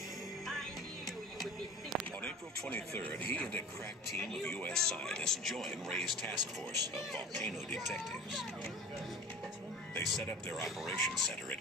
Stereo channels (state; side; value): normal; both; correlation 0.39